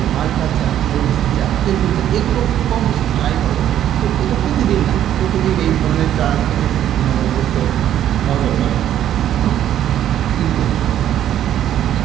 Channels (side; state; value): left; quieter; 11.1 dB